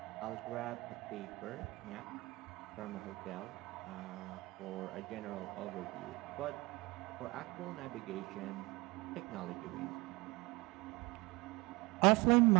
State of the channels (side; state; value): left; quieter; 23.1 dB